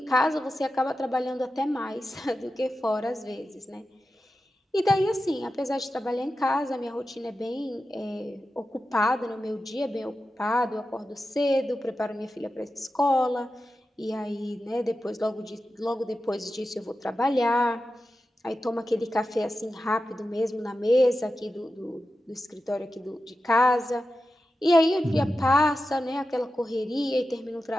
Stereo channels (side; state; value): both; normal; correlation 0.92